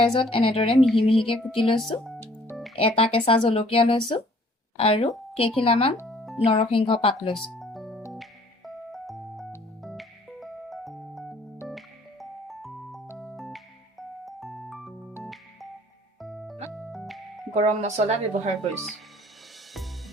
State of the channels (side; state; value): both; normal; correlation 0.57